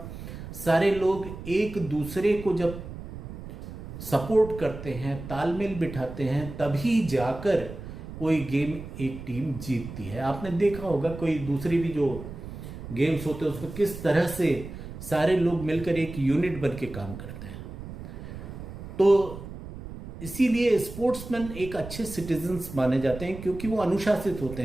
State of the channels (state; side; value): noise; right; rumble, 11 dB below the sound